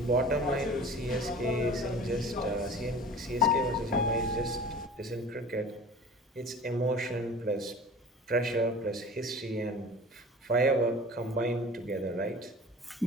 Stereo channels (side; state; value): both; normal; correlation 0.41